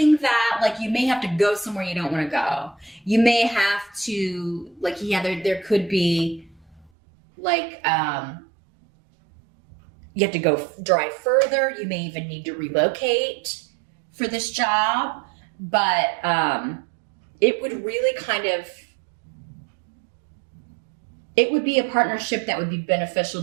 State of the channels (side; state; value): left; drops out; at 6.9 s